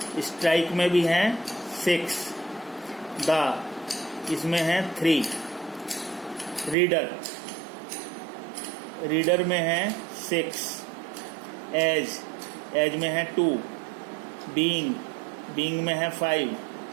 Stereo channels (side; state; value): left; drops out; at 6.8 s